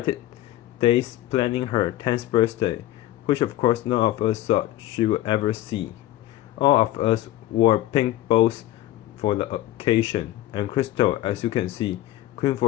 days planning her 10th birthday, which of course none of us thought she would ever see. All of us wore pink bows for the occasion, and Crystal, as you can see, queen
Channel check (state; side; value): quieter; right; 14.6 dB